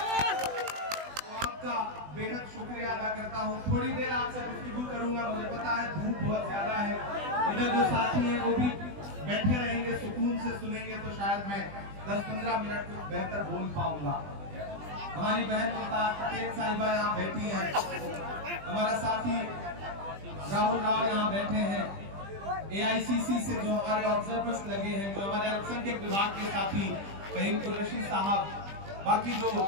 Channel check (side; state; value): left; late; 20 ms